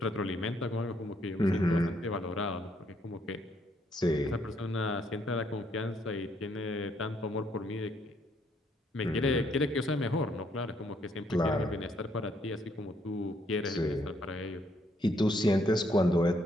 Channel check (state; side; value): normal; both; correlation 0.71